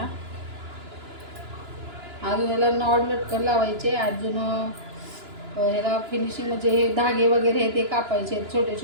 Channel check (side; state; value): left; late; 2.9 ms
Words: अजून याला नॉड लटकन लावायचे. अजून ह्याला फिनिशिंग म्हणजे हे धागे वगैरे हे ते कापायचे छोटे